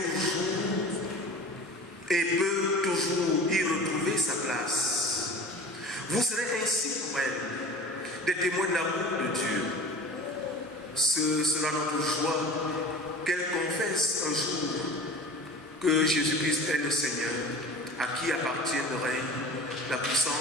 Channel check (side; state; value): both; normal; correlation 0.39